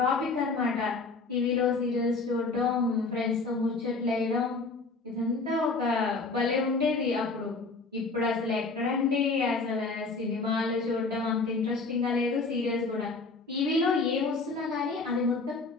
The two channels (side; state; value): right; quieter; 3.9 dB